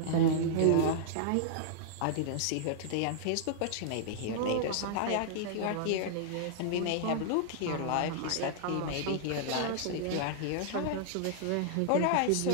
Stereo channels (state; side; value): different; both; correlation -0.01